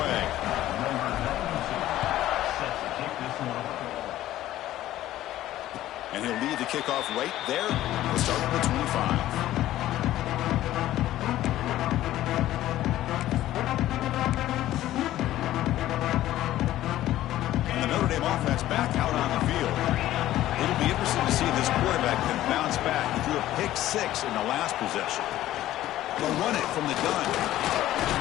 And he'll lead the kickoff right there. We'll start at the 25. Notre Dame offense back out on the field. It'll be interesting to see if this quarterback can bounce back. He threw a pick 6 in the last possession. They'll run it from the gun.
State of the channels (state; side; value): quieter; right; 14.1 dB